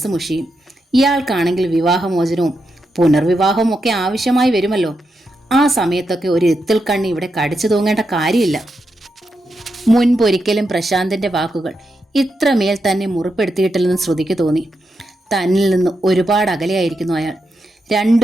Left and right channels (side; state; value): both; normal; correlation 0.85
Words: മുഷിയും. ഇയാൾക്കാണെങ്കിൽ വിവാഹമോചനവും പുനർവിവാഹവും ഒക്കെ ആവശ്യമായി വരുമല്ലോ. ആ സമയത്തൊക്കെ ഒരു എത്തിൽ കണ്ണി ഇവിടെ കടിച്ചു തൂങ്ങേണ്ട കാര്യമില്ല. മുൻപൊരിക്കലും പ്രശാന്തിന്റെ വാക്കുകൾ ഇത്രമേൽ തന്നെ മുറിപ്പെടുത്തിയിട്ടില്ലെന്ന് ശ്രുതിക്ക് തോന്നി. തന്നിൽ നിന്ന് ഒരുപാട് അകലെയായിരിക്കുന്നു അയാൾ.